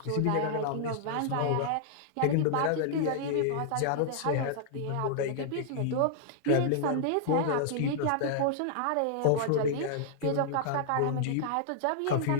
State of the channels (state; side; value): different; both; correlation -0.01